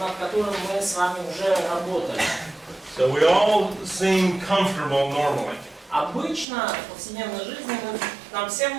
которым мы с вами уже работали. So we all seem comfortable normally. Обычно в повседневной жизни нам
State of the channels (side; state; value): left; drops out; at 6.5 s